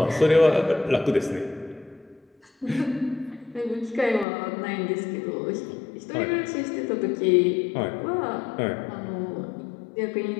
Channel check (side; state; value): right; drops out; at 4.2 s